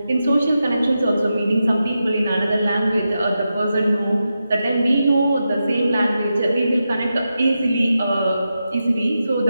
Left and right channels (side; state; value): both; inverted; correlation -0.89